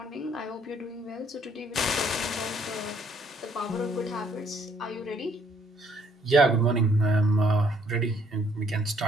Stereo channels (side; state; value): both; normal; correlation 0.65